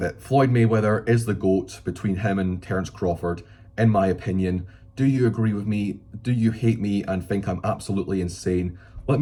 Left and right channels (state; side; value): identical; both; correlation 1.00